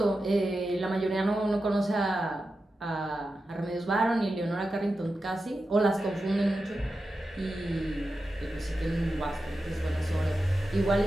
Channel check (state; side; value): normal; both; correlation 0.91